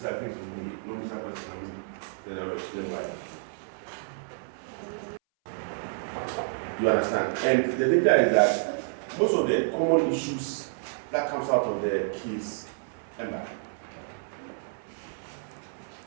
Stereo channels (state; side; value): silent; left; 58 dB below the other